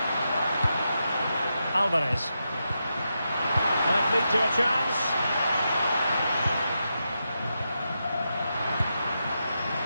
Alvarez. Might lead to a chance.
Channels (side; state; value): both; inverted; correlation -0.86